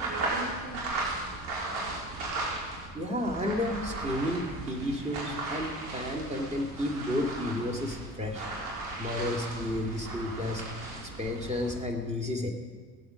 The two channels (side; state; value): both; normal; correlation 0.41